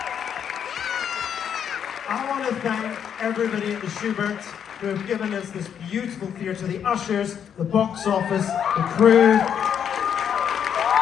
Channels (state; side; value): quieter; right; 8.3 dB